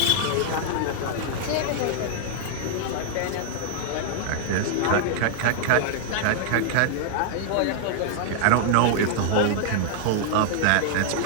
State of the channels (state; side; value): different; both; correlation 0.00